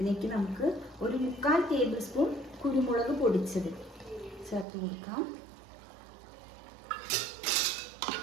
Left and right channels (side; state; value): left; drops out; at 4.7 s